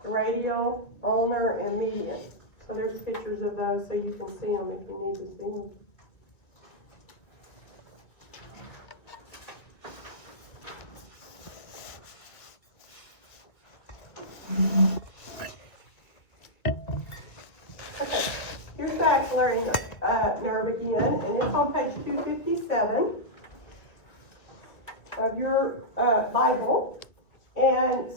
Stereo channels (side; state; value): right; late; 1.9 ms